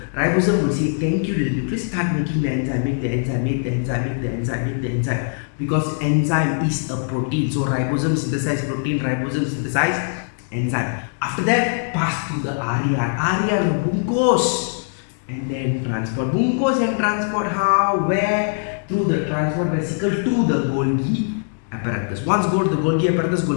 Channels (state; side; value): silent; right; digital silence